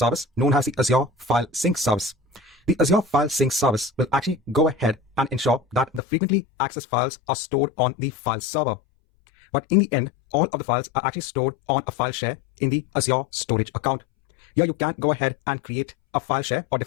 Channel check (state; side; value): drops out; right; at 6.0 s